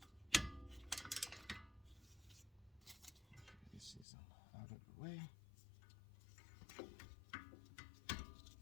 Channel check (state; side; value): drops out; right; at 4.0 s